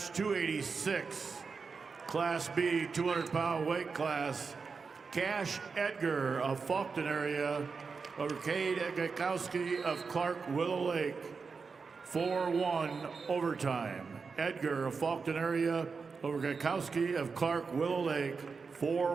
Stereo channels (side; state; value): left; quieter; 5.0 dB